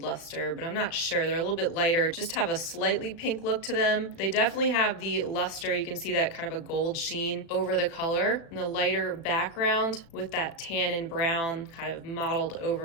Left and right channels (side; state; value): right; late; 36 ms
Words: luster, but I'm not sure. They're a little bit lighter, just have a slightly pink look to them. They definitely have the luster. You can see that kind of a gold sheen over the color and the lighter background with that tan and brown kind of modeled